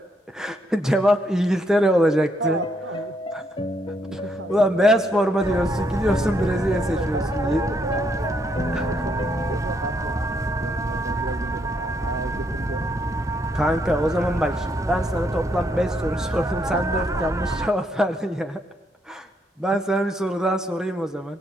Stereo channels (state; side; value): normal; both; correlation 0.75